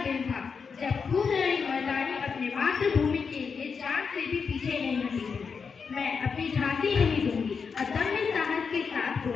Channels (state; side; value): quieter; right; 5.7 dB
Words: दिन था जब खूबलड़ी मर्दानी अपने मातृभूमि के लिए जान से भी पीछे नहीं हटी थी। मैं अपनी झांसी नहीं दूंगी अदम्य साहस के साथ